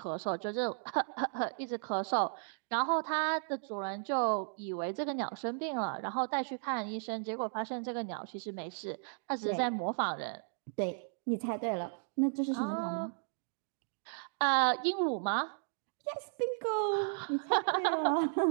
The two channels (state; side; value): silent; left; digital silence